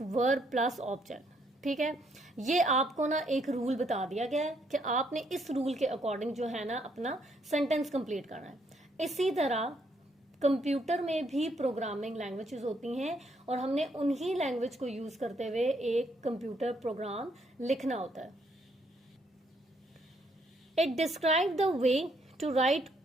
verb plus object. ठीक है, ये आपको ना एक रूल बता दिया गया है कि आपने इस रूल के अकॉर्डिंग जो है ना अपना सेंटेंस कंप्लीट करना है। इसी तरह कंप्यूटर में भी प्रोग्रामिंग लैंग्वेजेस होती हैं और हमने उन्हीं लैंग्वेज को यूज करते हुए एक कंप्यूटर प्रोग्राम लिखना होता है। It describe the way to write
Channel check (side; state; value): both; normal; correlation 0.71